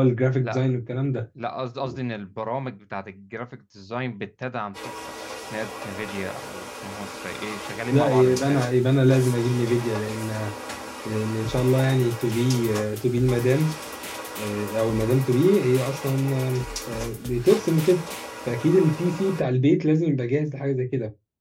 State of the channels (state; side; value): identical; both; correlation 1.00